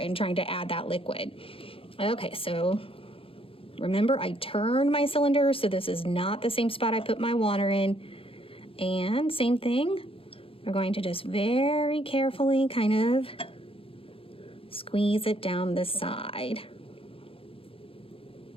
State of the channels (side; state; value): right; late; 0.27 ms